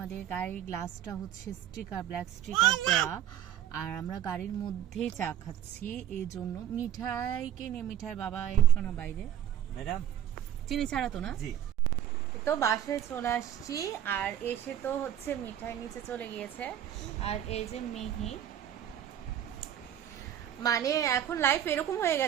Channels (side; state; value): left; quieter; 10.7 dB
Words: গাড়ির গ্লাসটা হচ্ছে স্টিকার, ব্ল্যাক স্টিকার দেওয়া, আর আমরা গাড়ির মধ্যেই চা খাচ্ছি, এই জন্য মিঠাইকে নিয়ে মিঠাই বাবা এসো না বাইরে, ম্যাডাম চিনি ছাড়া তো না। জি তো বাসায় চলে আসছি, আর এসে তো হচ্ছে মিঠাই নিচে চলে গিয়েছে, আর এই যে মিহি। মানে এখন লাইফ এরকম হয়ে